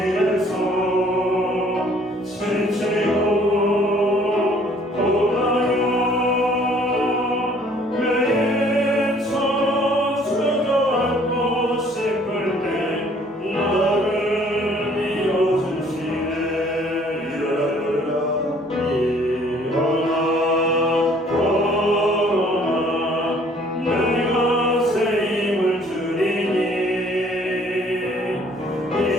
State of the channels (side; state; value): both; normal; correlation 0.58